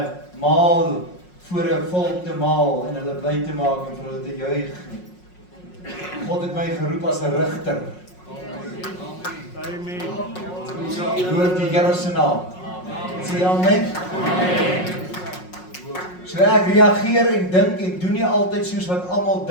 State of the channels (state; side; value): late; right; 5.5 ms